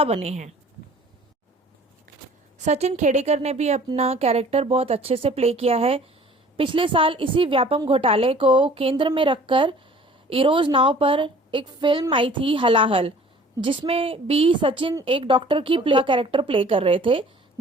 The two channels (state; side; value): normal; both; correlation 0.50